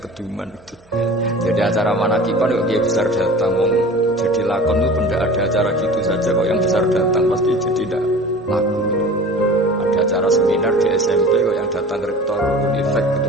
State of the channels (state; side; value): normal; both; correlation 0.40